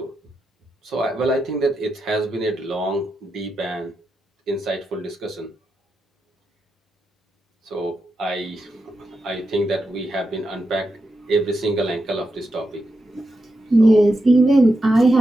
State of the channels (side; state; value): both; normal; correlation 0.87